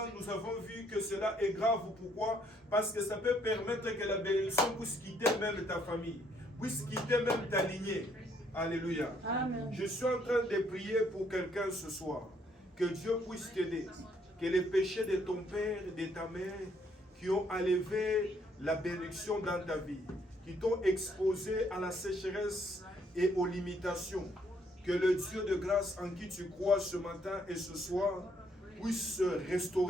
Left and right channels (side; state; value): both; normal; correlation 0.69